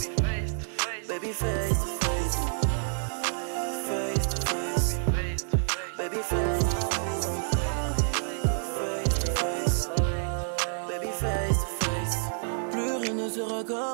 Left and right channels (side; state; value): left; silent; digital silence